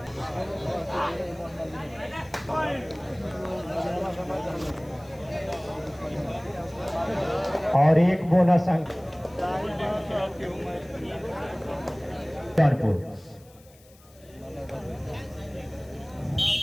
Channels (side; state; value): left; noise; hiss, 27 dB below the sound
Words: और एक बोनस अंक कानपुर।